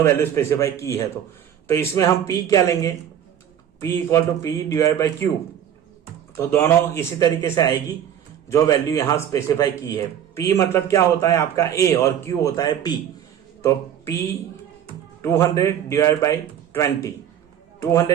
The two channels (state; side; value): quieter; left; 9.7 dB